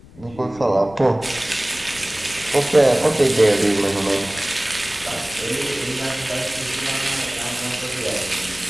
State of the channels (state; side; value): noise; left; rumble, 21 dB below the sound